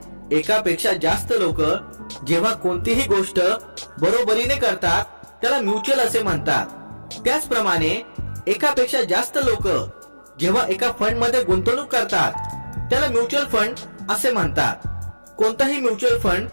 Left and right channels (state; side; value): inverted; both; correlation -1.00